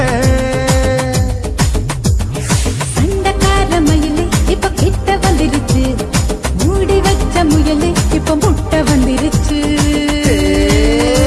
சண்டக்கார மயிலு இப்ப கிட்ட வந்துருச்சு மூடி வச்ச முயலு இப்ப முட்டை வந்துருச்சு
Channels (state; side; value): identical; both; correlation 1.00